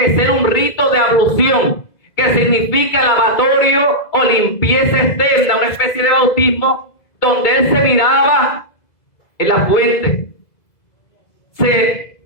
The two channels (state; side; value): late; right; 2.0 ms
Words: ser un rito de ablución, que significa lavatorio o limpieza externa, una especie de bautismo, donde él se miraba en la fuente.